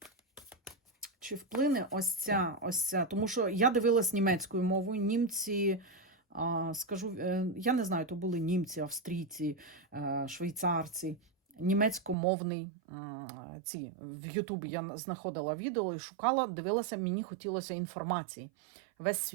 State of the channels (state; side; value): drops out; left; at 12.2 s